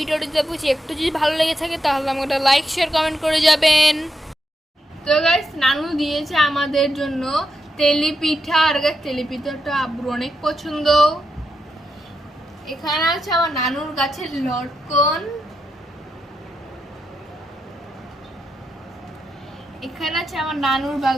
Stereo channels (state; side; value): normal; both; correlation 0.84